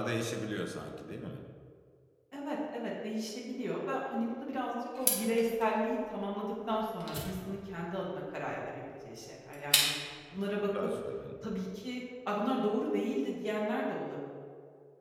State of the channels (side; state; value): both; identical; correlation 1.00